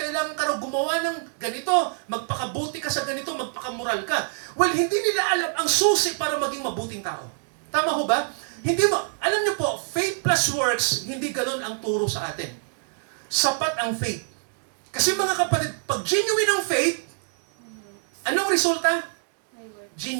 ka raw gumawa ng ganito, magpakabuti ka sa ganito, magpakamoral ka. Well, hindi nila alam ang susi para maging mabuting tao. Tama ho ba? Alam niyo po, faith plus works, hindi galon ang turo sa atin. Sapat ang faith. Kasi mga kapatid, pag genuine ang faith, anong resulta?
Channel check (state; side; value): silent; left; digital silence